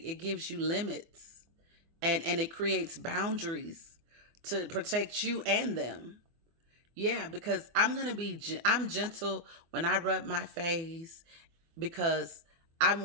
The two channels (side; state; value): left; late; 24 ms